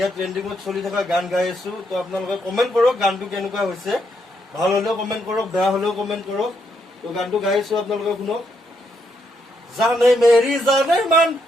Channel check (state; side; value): normal; both; correlation 0.77